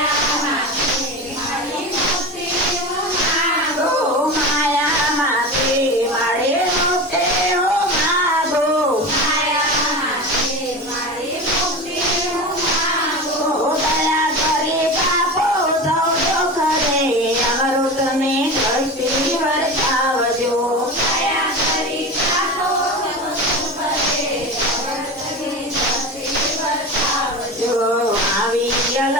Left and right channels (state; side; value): normal; both; correlation 0.27